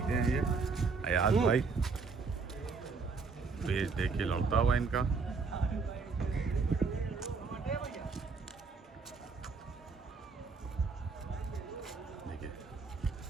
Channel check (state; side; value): quieter; left; 4.6 dB